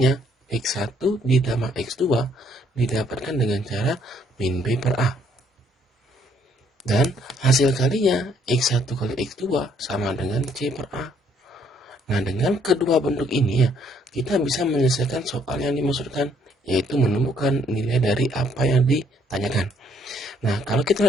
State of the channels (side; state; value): both; normal; correlation 0.66